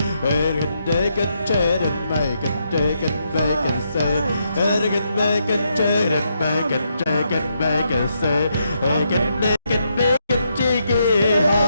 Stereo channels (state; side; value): inverted; both; correlation -0.79